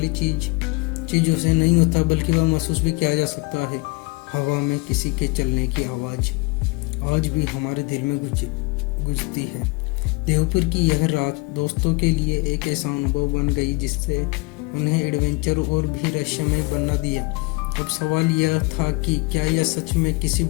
चीज़ों से नहीं होता, बल्कि वह महसूस भी किया जा सकता है। हवा में किसी के चलने की आवाज़ आज भी हमारे दिल में गुजती है। देवपुर की यह रात दोस्तों के लिए एक ऐसा अनुभव बन गई जिससे उन्हें एडवेंचर और भी रहस्यमय बना दिया। अब सवाल यह था कि क्या यह सच में किसी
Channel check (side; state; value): right; quieter; 26.8 dB